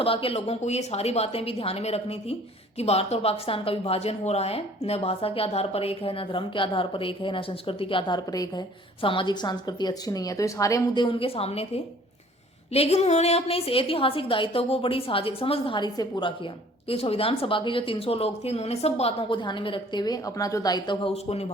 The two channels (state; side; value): normal; both; correlation 0.53